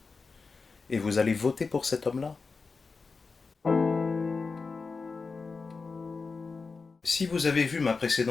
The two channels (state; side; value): quieter; right; 4.5 dB